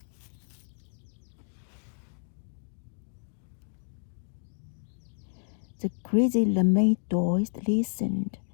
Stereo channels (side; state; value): right; silent; digital silence